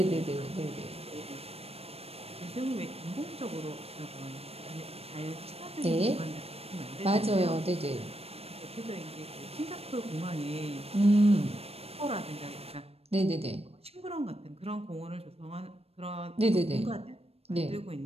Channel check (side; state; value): left; late; 0.29 ms